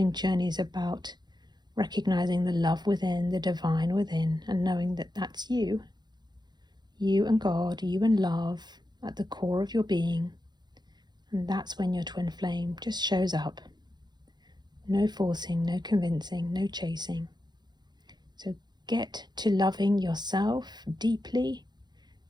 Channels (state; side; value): late; left; 0.21 ms